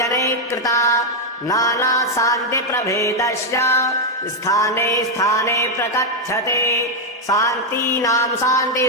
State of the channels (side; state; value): both; normal; correlation 0.01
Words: कृता नानाशान्तिप्रभेदस्य स्थाने स्थाने प्रकथ्यते शान्तीनां